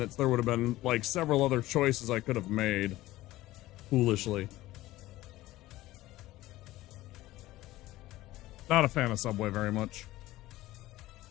there would have been like several other choices I could have made. Foolishly. Not a fan of Subway very much.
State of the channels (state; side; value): quieter; right; 16.9 dB